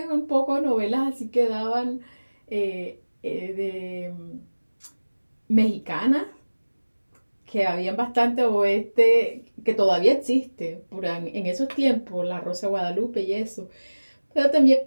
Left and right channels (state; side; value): inverted; both; correlation -1.00